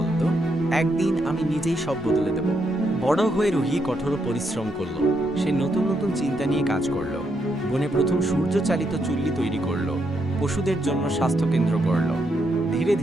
একদিন আমি নিজেই সব বদলে দেব। বড় হয়ে রুহি কঠোর পরিশ্রম করলো। সে নতুন নতুন চিন্তা নিয়ে কাজ করলো। বনে প্রথম সূর্য চালিত চুল্লি তৈরি করলো, পশুদের জন্য স্বাস্থ্যকেন্দ্র করলো। ধীরে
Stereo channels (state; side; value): normal; both; correlation 0.79